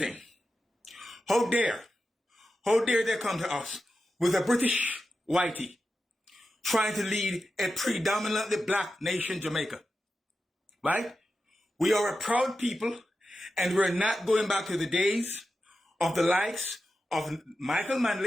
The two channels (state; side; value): normal; both; correlation 0.91